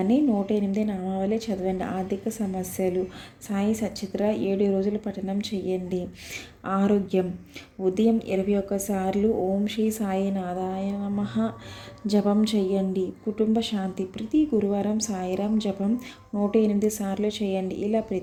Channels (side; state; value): both; identical; correlation 1.00